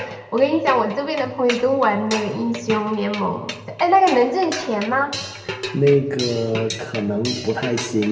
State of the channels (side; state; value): both; identical; correlation 1.00